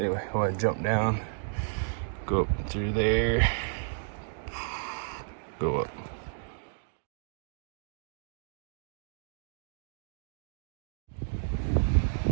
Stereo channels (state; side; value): silent; left; 56 dB below the other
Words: I want to jump down, go up through there, go up.